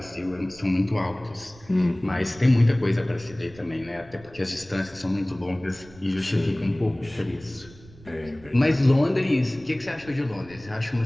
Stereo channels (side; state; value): right; noise; rumble, 22 dB below the sound